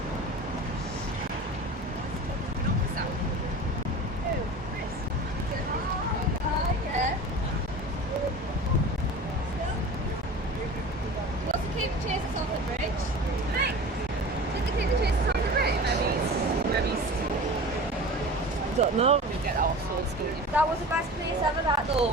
Don't know. That was the best place ever, that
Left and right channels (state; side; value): normal; both; correlation 0.36